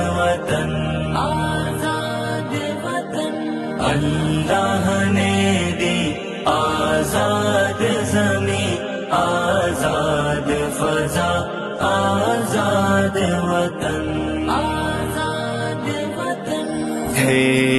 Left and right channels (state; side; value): identical; both; correlation 1.00